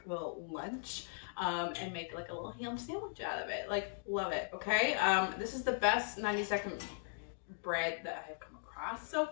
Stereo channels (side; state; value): right; silent; digital silence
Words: little lunch and make like a little ham sandwich out of it. Like, love it, okay? This is the best 90-second bread that I have come across so